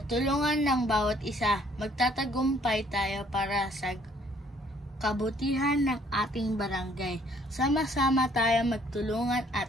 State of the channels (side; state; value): both; normal; correlation 0.62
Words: tulungan ng bawat isa, magtatagumpay tayo para sa kabutihan ng ating barangay. Sama-sama tayo magtulungan